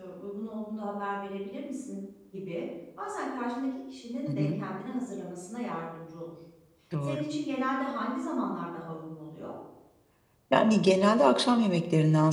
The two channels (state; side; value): identical; both; correlation 1.00